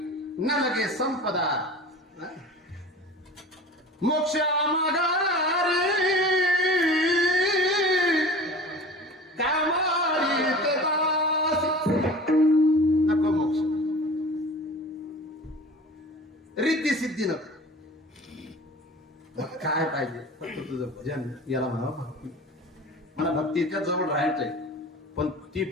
न लगे संपदा, मोक्ष मागारे कामारी ते दास. नको मोक्ष, रिद्धी सिद्धी नको. काय पाहिजे? फक्त तुझं भजन. याला म्हणावं भक्ती. मला भक्तीच्या जवळ राहायचंय, पण ती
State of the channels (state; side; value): normal; both; correlation 0.39